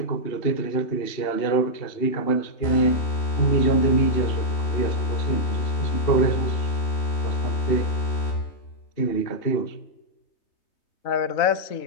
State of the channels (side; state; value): right; late; 2.7 ms